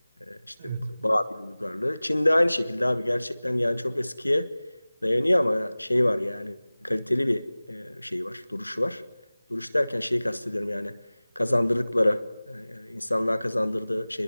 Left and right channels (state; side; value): inverted; both; correlation -0.99